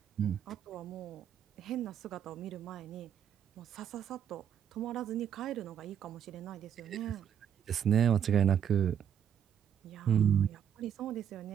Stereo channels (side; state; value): left; quieter; 8.8 dB